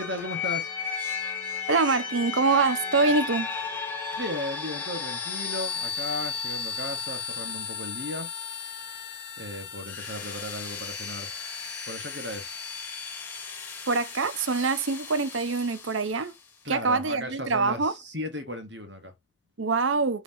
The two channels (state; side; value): normal; both; correlation -0.19